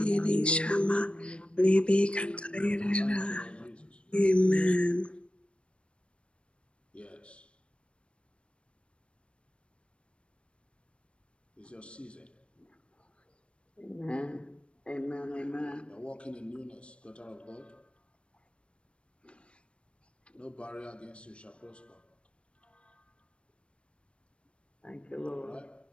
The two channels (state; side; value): late; right; 0.058 ms